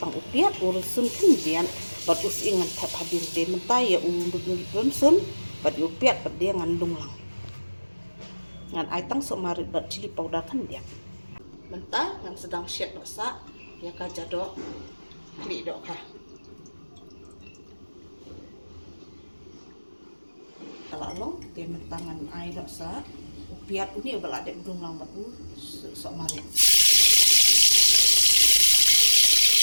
upiat urusun kendian bat us ingan tap hadir de mentai ya urun bat upiat pede ngan dunglang. Ngan ai tang sok marit bat cili powder kan dia. Mentah ngan sedang shet no sa ya ka jadok klidok ka. Kalau dia mentangan air dosa upiat ini bala adek dung lambat sok mari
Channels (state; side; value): inverted; both; correlation -1.00